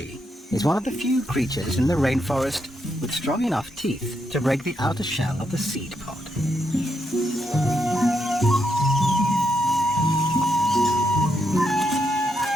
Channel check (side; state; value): both; normal; correlation 0.80